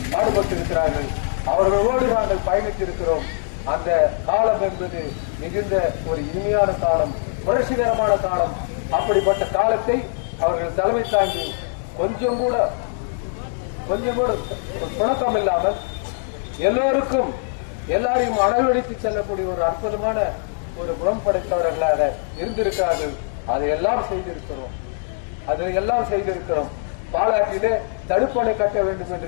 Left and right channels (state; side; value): silent; right; digital silence